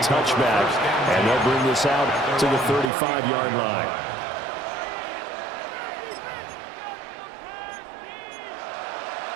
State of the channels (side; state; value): left; drops out; at 2.9 s